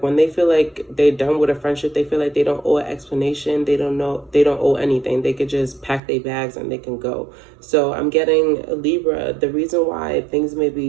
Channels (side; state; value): left; drops out; at 6.0 s